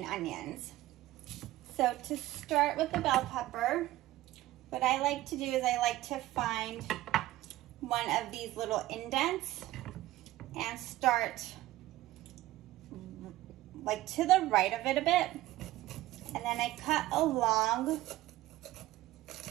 onions. So to start with the bell pepper, what I like to do is I like to find one of these little indents and start like to the right of it a bit. And then I cut along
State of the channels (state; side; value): quieter; left; 16.3 dB